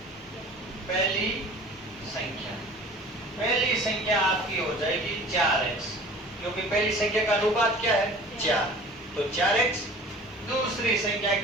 पहली संख्या आपकी हो जाएगी 4x, क्योंकि पहली संख्या का अनुपात क्या है? 4, तो 4x। दूसरी संख्या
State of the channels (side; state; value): both; normal; correlation 0.44